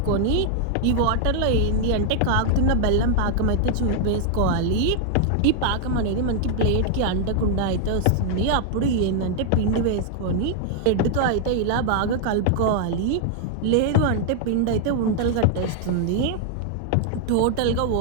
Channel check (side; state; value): both; different; correlation -0.01